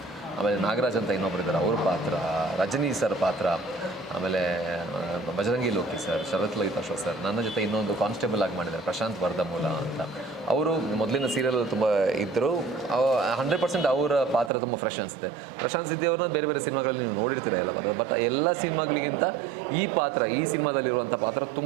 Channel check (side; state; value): left; drops out; at 14.5 s